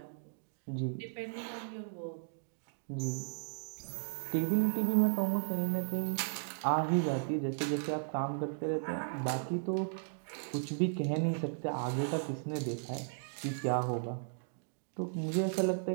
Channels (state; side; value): silent; left; digital silence